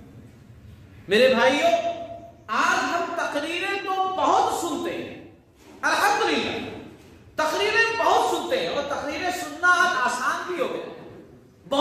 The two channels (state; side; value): identical; both; correlation 1.00